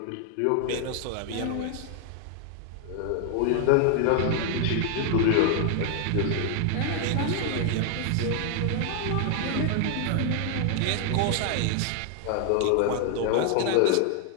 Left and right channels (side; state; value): both; different; correlation 0.00